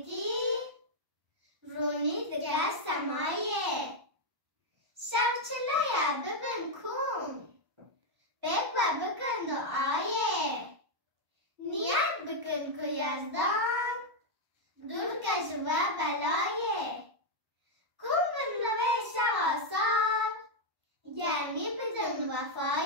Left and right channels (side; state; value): left; late; 1.0 ms